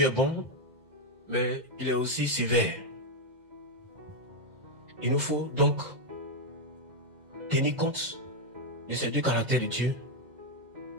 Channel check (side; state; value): left; late; 2.1 ms